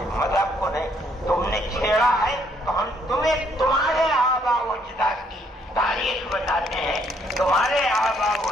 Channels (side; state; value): both; normal; correlation 0.68